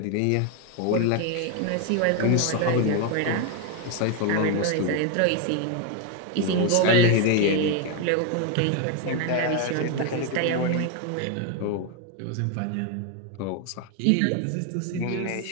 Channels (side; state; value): both; different; correlation 0.01